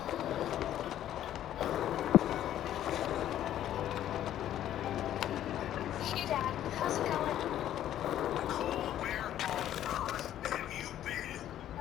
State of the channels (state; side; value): quieter; right; 11.7 dB